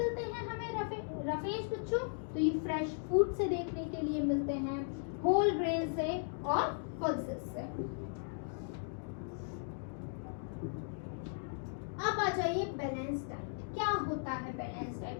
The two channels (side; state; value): right; silent; digital silence